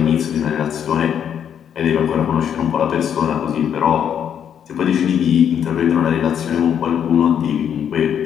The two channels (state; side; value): quieter; right; 8.7 dB